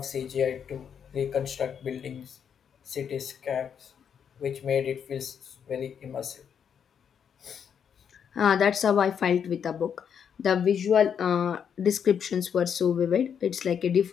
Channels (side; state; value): right; quieter; 7.7 dB